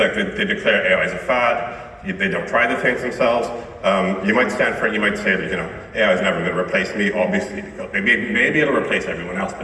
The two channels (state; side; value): identical; both; correlation 1.00